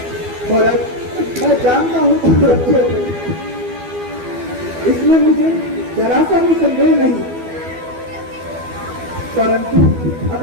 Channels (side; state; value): left; late; 12 ms